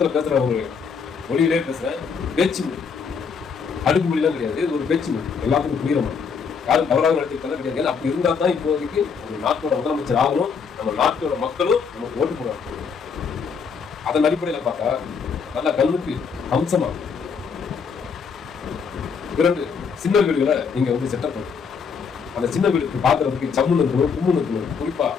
பேசுறவங்க மொழியிலே பேசுறேன், பேச்சு மொழி, அடுக்கு மொழிலாம் கிடையாது. இது ஒரு பேச்சு மொழி, எல்லாத்துக்கும் புரியுற மாதிரி. யாரும் தவறாக நடத்திக்கலாம் கிடையாது. அப்படி இருந்தா தான் இப்போதைக்கு ஒரு நாட்டோட முதலமைச்சர் ஆகணும், நம்ம நாட்டோட மக்களும் நமக்கு ஓட்டு போடுவாங்க. அதன் அடிப்படையில் பார்த்தா நல்ல கல்விக்கு அம்சமா 2 சின்ன வீடுகளை நீங்க வந்து செட்டப் பண்ணுங்க. அந்த சின்ன வீடுக்கு பாக்குறதுக்கு சம்முன்னு இருக்கணும், கும்முன்னு இருக்கணும். குறிப்பா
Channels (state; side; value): quieter; right; 5.9 dB